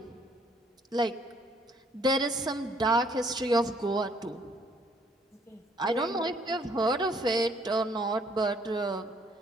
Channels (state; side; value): normal; both; correlation 0.64